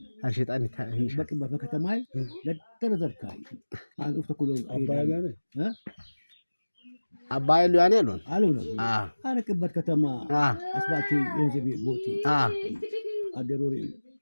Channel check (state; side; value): inverted; both; correlation -1.00